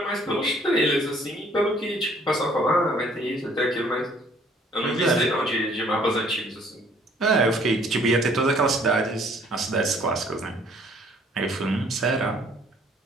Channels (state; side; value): normal; both; correlation 0.59